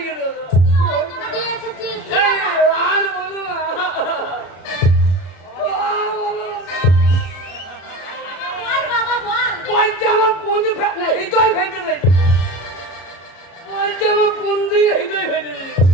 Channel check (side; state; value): right; late; 33 ms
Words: দিয়েছে বলছে আমার কোন দিয়ে হৃদয় ভেঙে দিয়েছে